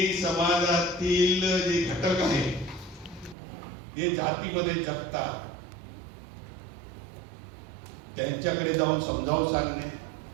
समाजातील जे घटक आहेत जे जातीमध्ये जगतात त्यांच्याकडे जाऊन समजावून सांगणे,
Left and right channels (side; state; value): left; drops out; at 3.4 s